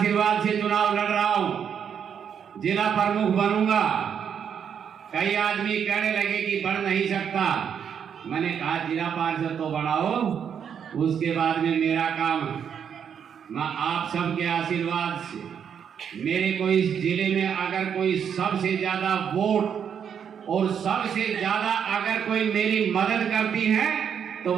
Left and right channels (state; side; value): quieter; left; 7.8 dB